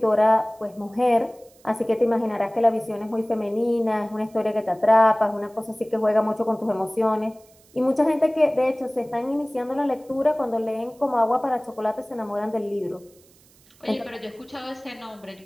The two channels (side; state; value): right; noise; hiss, 29 dB below the sound